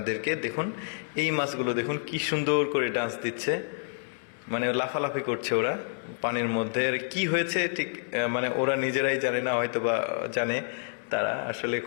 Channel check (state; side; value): silent; right; 59 dB below the other